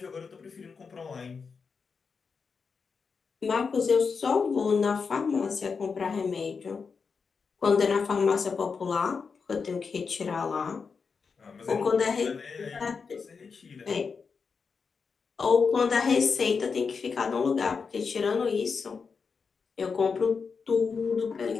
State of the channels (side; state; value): right; quieter; 5.4 dB